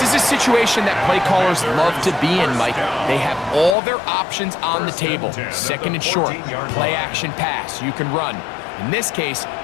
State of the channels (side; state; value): right; drops out; at 3.8 s